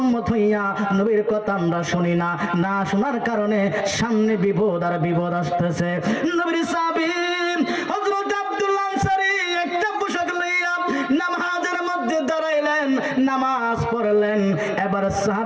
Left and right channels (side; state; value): both; identical; correlation 1.00